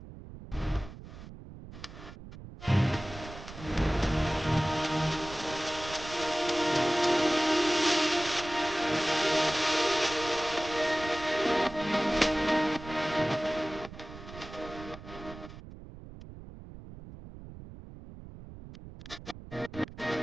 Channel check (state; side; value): noise; right; rumble, 14 dB below the sound